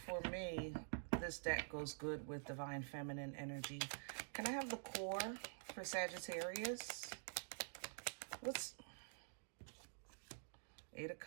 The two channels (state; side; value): silent; left; digital silence